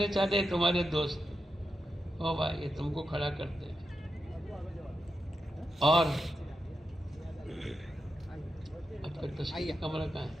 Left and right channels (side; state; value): both; normal; correlation 0.89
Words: چاہتے ہیں تمہارے دوست. او بھائی یہ تم کو کھڑا کرتے ہیں. اور آپ کا تشکیلی کمرہ کہاں ہے؟